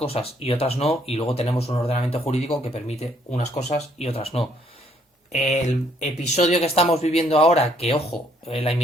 y otras no, y luego tenemos un ordenamiento jurídico que permite unas cosas y otras no. El episodio que estamos viviendo ahora, que ojo, la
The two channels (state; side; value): normal; both; correlation 0.67